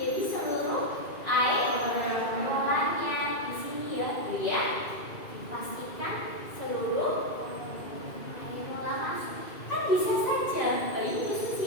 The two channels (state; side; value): late; right; 2.3 ms